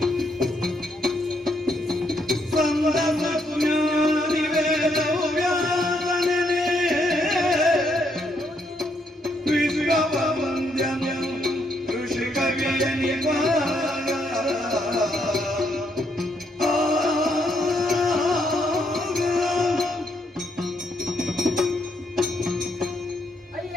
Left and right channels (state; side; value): normal; both; correlation 0.75